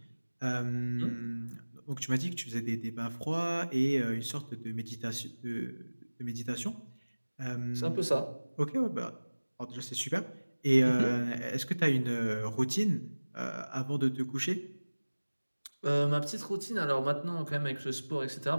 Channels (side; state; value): both; inverted; correlation -1.00